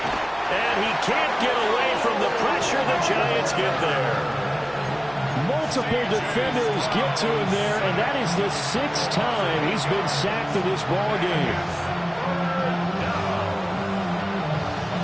And he can't get away from the pressure. The Giants get there. Multiple defenders get to him there, and that is the 6th time he's been sacked in this ball game.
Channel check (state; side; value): noise; left; hum, 26 dB below the sound